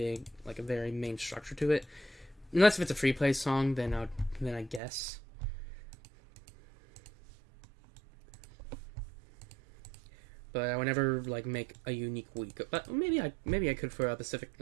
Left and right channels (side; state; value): left; drops out; at 4.8 s